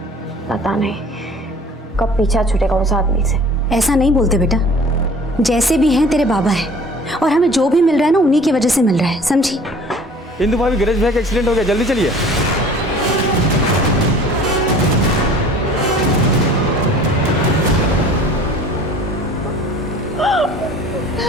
पता नहीं कब पीछा छूटेगा उस आदमी से। ऐसा नहीं बोलते बेटा, जैसे भी हैं तेरे बाबा हैं, और हमें जो भी मिल रहा है ना उन्हीं की वजह से मिल रहा है, समझी? इंदु भाभी, गणेश भैया का एक्सीडेंट हो गया, जल्दी चलिए।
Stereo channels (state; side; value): normal; both; correlation 0.48